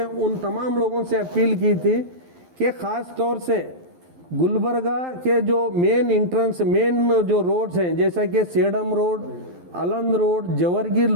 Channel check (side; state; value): left; late; 12 ms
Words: उन तमाम लोगों से अपील की थी कि ख़ास तौर से गुलबर्गा के जो मेन जो रोड्स हैं, जैसा कि Sedam road, Aland road, Jewargi